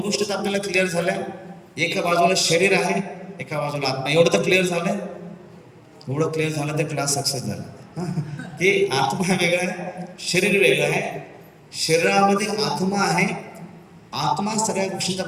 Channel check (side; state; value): both; identical; correlation 1.00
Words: तर आपल्याला क्लिअर झाल्या. एका बाजूला शरीर आहे, एका बाजूला आत्मा. एवढं तर क्लिअर झालंय. एवढं क्लिअर झालं तर क्लास सक्सेस झाला. की आत्मा वेगळा आहे, शरीर वेगळं आहे. शरीरामध्ये आत्मा आहे. आत्मा सगळ्या गोष्टींचा